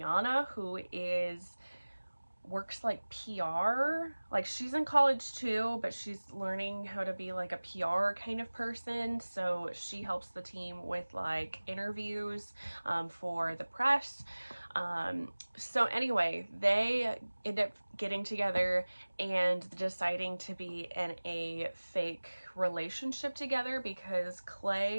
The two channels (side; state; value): both; inverted; correlation -1.00